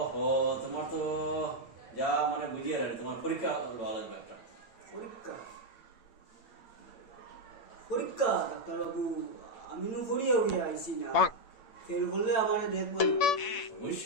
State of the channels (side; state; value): right; late; 8.7 ms